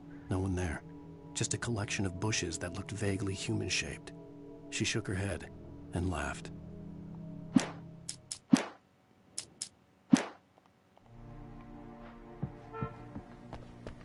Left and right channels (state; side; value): identical; both; correlation 1.00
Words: No one there. Just a collection of bushes that looked vaguely human-shaped. She shook her head and laughed.